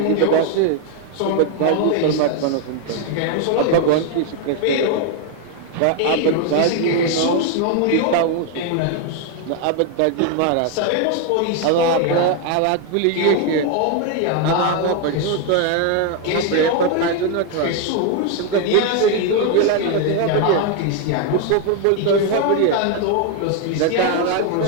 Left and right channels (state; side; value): different; both; correlation 0.01